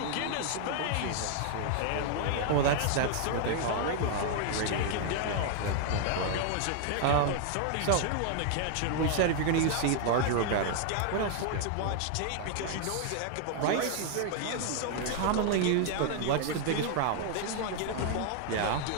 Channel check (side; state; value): both; different; correlation 0.00